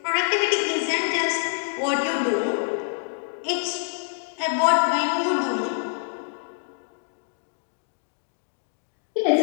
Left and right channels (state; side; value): silent; right; digital silence